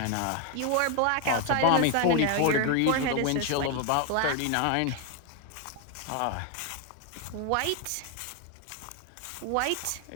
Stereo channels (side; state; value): both; different; correlation 0.01